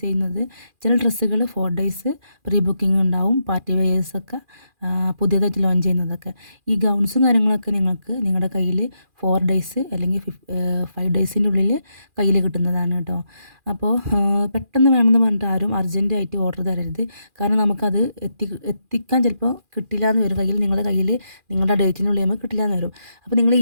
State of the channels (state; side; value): late; left; 2.4 ms